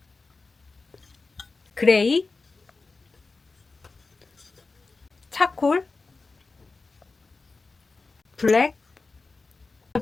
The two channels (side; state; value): right; quieter; 3.9 dB